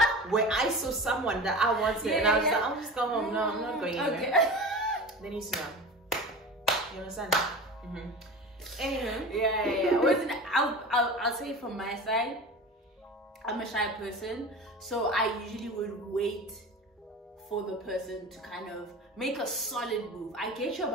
where I saw someone that I wanted and I was like, I'll just go home. No, I'm not going anywhere. They need to know. You understand? Anywho, I'll say from my side, I'm a shy person, so I usually would wait for the person to kind of make a solid move. I get you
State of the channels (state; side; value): normal; both; correlation 0.33